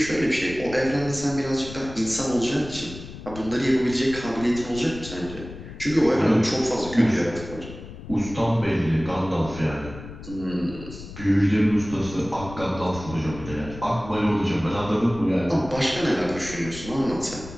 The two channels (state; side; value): noise; left; rumble, 13 dB below the sound